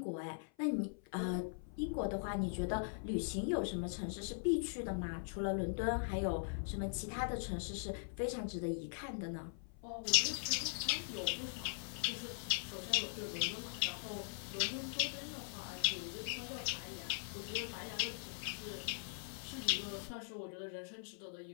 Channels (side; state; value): right; silent; 50 dB below the other